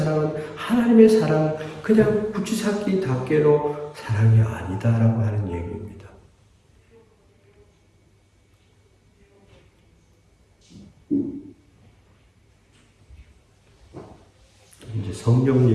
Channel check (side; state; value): both; identical; correlation 1.00